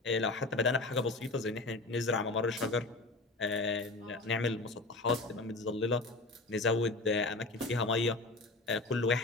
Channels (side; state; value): right; quieter; 3.2 dB